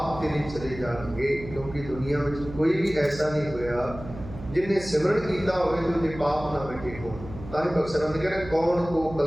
ਤੇਰੇ ਚਲੇ ਜਾਣਗੇ। ਕਿਉਂਕਿ ਦੁਨੀਆ ਵਿੱਚ ਕੋਈ ਵੀ ਐਸਾ ਨਹੀਂ ਹੋਇਆ जिन्हें सिमरण किया होवे तो उनके पाप ना मिटे हो। ताकि बख्शरण कह रहे कौन को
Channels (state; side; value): noise; right; hum, 13 dB below the sound